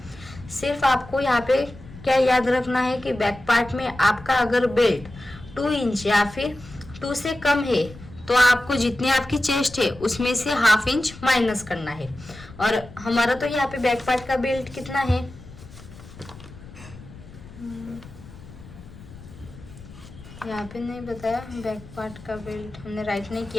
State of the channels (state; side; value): noise; left; rumble, 18 dB below the sound